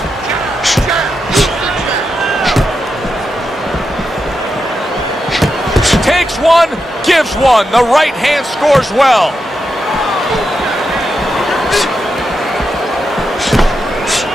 Takes one, gives one. The right hand scores well.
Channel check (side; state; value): both; normal; correlation 0.86